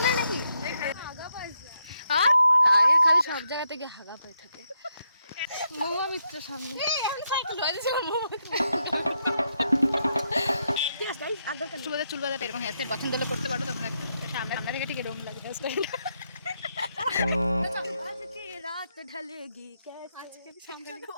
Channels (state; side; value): inverted; both; correlation -0.80